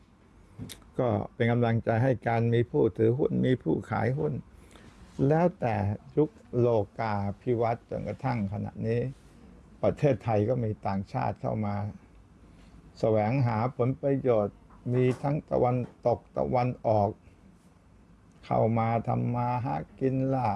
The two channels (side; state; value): both; identical; correlation 1.00